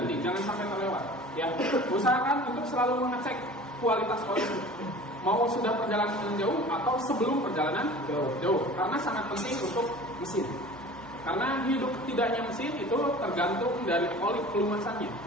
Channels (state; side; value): normal; both; correlation 0.41